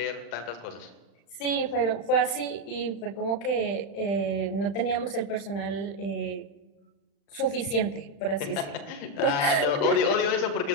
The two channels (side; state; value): right; late; 35 ms